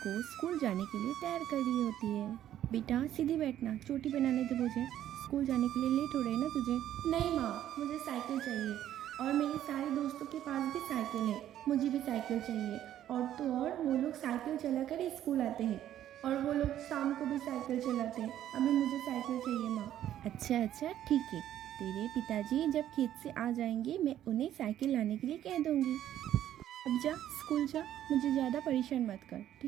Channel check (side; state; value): left; quieter; 11.7 dB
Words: स्कूल जाने के लिए तैयार कर रही होती है। बेटा सीधी बैठना, चोटी बनाने दे मुझे, स्कूल जाने के लिए लेट हो रहे ना तुझे। नहीं माँ, मुझे साइकिल चाहिए और मेरे सारे दोस्तों के पास भी साइकिल है, मुझे भी साइकिल चाहिए। और तो और वो लोग साइकिल चला कर ही स्कूल आते हैं और वो लोग शाम को भी साइकिल चलाते हैं। अभी मुझे साइकिल चाहिए माँ। अच्छा ठीक है, तेरे पिताजी जब खेत से आ जाएंगे मैं उन्हें साइकिल लाने के लिए कह दूँगी। अब जा स्कूल जा, मुझे ज़्यादा परेशान मत कर,